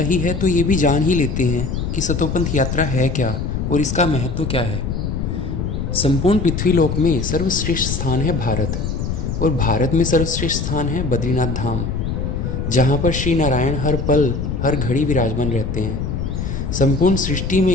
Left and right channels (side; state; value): left; noise; rumble, 3 dB below the sound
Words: है तो ये भी जान ही लेते हैं कि सतोपंथ यात्रा है क्या और इसका महत्व क्या है। संपूर्ण पृथ्वीलोक में सर्वश्रेष्ठ स्थान है भारत, और भारत में सर्वश्रेष्ठ स्थान है बद्रीनाथ धाम, जहाँ पर श्री नारायण हर पल हर घड़ी विराजमान रहते हैं। संपूर्ण सृष्टि